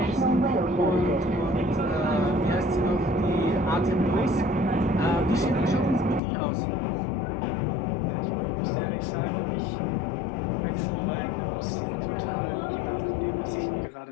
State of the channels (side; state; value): right; drops out; at 6.2 s